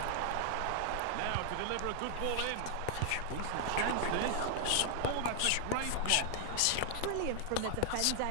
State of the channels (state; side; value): different; both; correlation 0.00